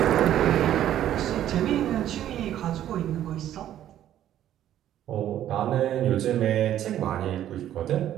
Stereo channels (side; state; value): left; quieter; 11.7 dB